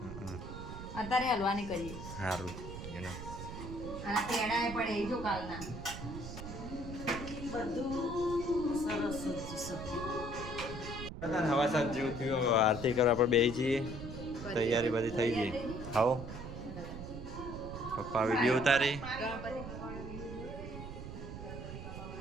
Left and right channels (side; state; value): right; noise; rumble, 9 dB below the sound